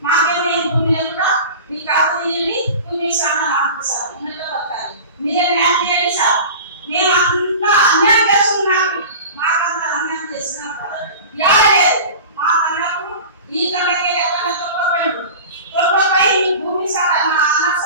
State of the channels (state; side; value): inverted; both; correlation -0.35